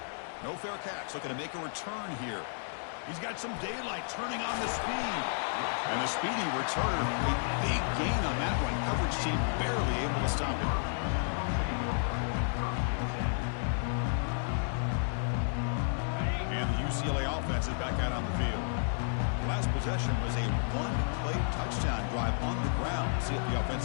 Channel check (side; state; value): right; silent; digital silence